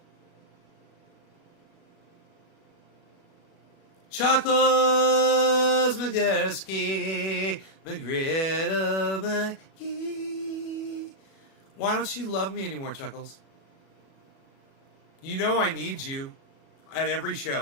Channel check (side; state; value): right; late; 37 ms